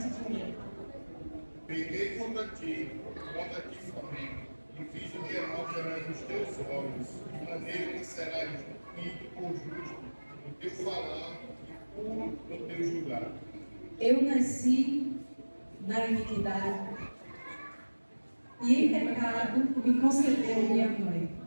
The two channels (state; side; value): inverted; both; correlation -1.00